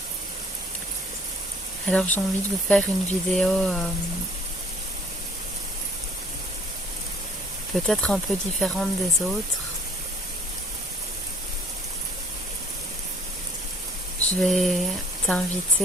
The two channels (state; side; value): normal; both; correlation 0.56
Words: Alors j'ai envie de vous faire une vidéo peut-être un peu différente des autres. Je vais